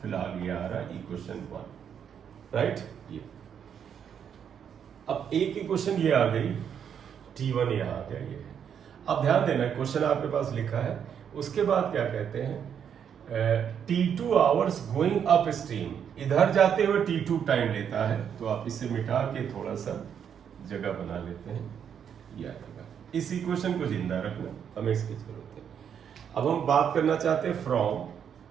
फिलहाल ये आ रहा इक्वेशन 1, राइट। ये अब अब एक इक्वेशन ये आ गई, T1 यहाँ आ गया ये। अब ध्यान देना, क्वेश्चन आपके पास लिखा है, उसके बाद क्या कहते हैं, T2 hours going up stream, इधर जाते हुए T2 टाइम लेता है। तो आप इसे मिटा के थोड़ा सा जगह बना लेते हैं, ये आएगा। इस इक्वेशन को जिंदा रखना, हमें इसकी जरूरत है। अब हम बात करना चाहते हैं from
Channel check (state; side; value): quieter; left; 8.1 dB